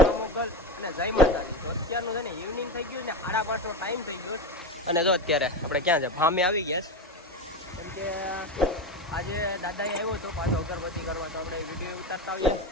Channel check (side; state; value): both; normal; correlation 0.19